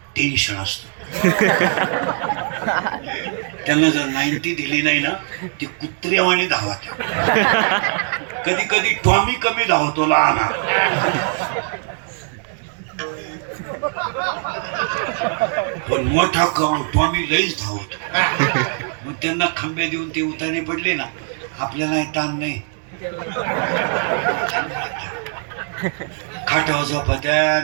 टेन्शन असतं त्यांना जर 90 दिली नाही ना ती कुत्र्यावाने धावत कधी कधी टॉमी कमी धावतो लहान पण मोठा टॉमी लईच धावतो मग त्यांना खंबे देऊन ते उतारे पडले ना आपल्याला ताण नाही खाटावर झोपत्या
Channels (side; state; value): left; silent; 55 dB below the other